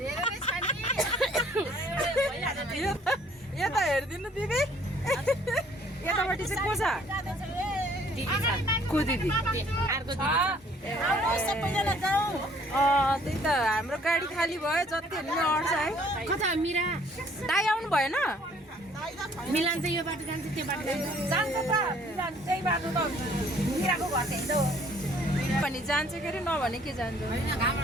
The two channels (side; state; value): both; normal; correlation 0.60